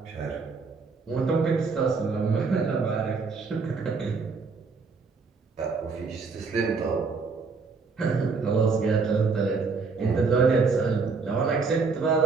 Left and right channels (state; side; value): quieter; left; 4.7 dB